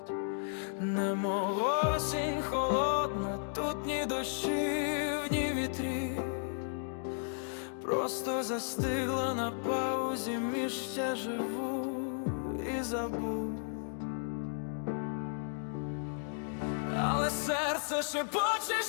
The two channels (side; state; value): right; silent; digital silence